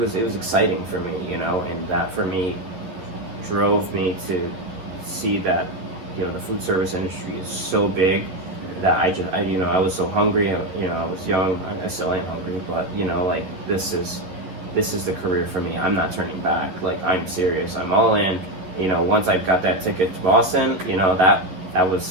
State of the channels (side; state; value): left; late; 11 ms